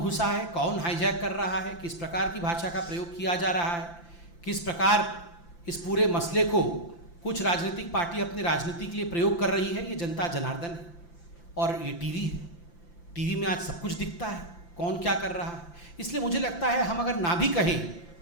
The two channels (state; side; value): late; right; 5.8 ms